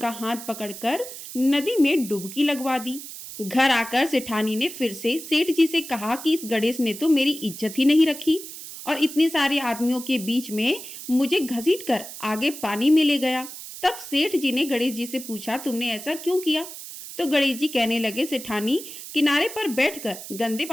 हाथ पकड़कर नदी में डुबकी लगवा दी। घर आकर सेठानी ने फिर से सेठ जी से कहा कि इस गणेश ने तो मेरी इज्जत ही नहीं रखी और इतने सारे आदमियों के बीच में मुझे घसीटकर आगे पानी में ले गया। तब सेठ जी ने गणेश जी से पूछा, तुमने ऐसा क्यों किया? तो गणेश जी कहने लगे, सेठानी किनारे पर बैठकर गंदे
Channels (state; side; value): noise; right; hiss, 12 dB below the sound